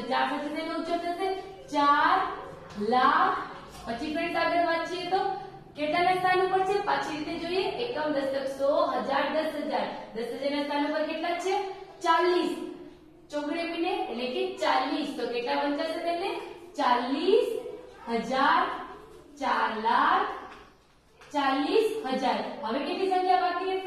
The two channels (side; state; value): both; identical; correlation 1.00